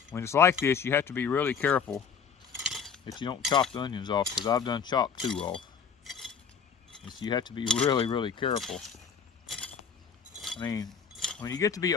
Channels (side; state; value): right; quieter; 6.6 dB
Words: When it's like this, you have to be really careful that you don't chop the onions off, because I've done chopped 2 off. And so you have to be really, really careful. I mean, when you get to be